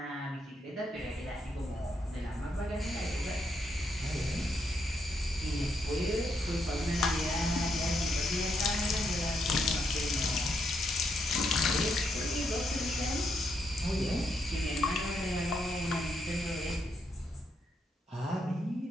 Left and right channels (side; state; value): both; normal; correlation 0.78